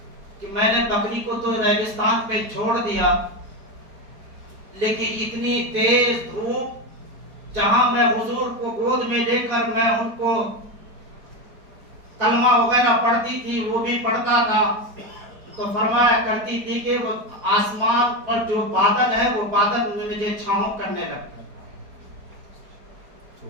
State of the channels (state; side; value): late; left; 4.5 ms